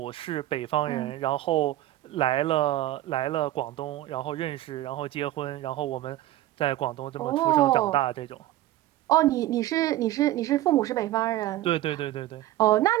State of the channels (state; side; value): quieter; left; 15.0 dB